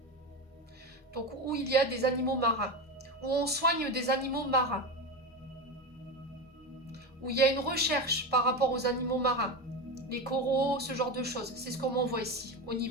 Donc où il y a des animaux marins. Où on soigne des animaux marins. Où il y a une recherche par rapport aux animaux marins. Les coraux, ce genre de choses. C'est ce qu'on m'envoie ici, au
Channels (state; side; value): normal; both; correlation 0.19